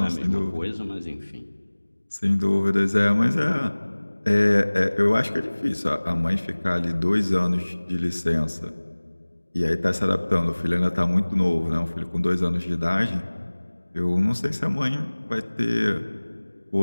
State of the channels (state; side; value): inverted; both; correlation -1.00